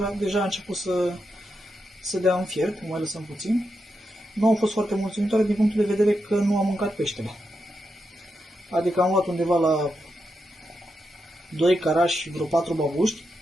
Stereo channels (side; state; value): both; normal; correlation 0.86